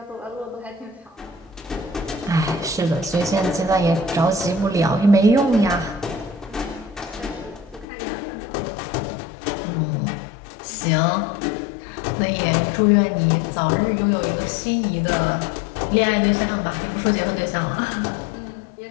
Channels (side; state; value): right; drops out; at 7.9 s